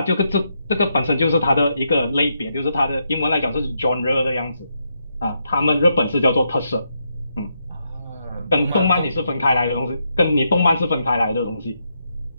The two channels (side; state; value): both; inverted; correlation -0.80